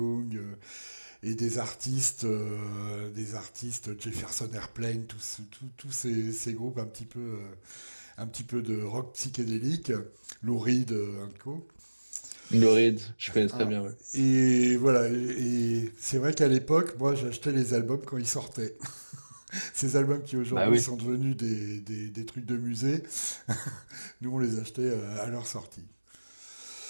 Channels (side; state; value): both; inverted; correlation -1.00